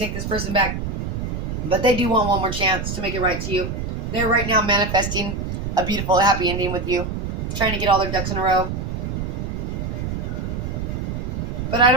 this person back, but they do want one more chance to make it right to you. They're right now manifesting a beautiful, happy ending with you, trying to get all their ducks in a row. But I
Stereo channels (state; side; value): noise; right; rumble, 3 dB below the sound